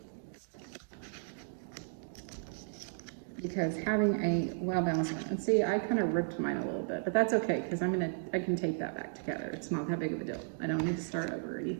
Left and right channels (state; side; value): silent; left; digital silence